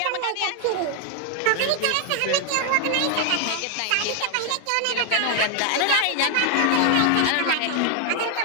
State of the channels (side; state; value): both; different; correlation 0.01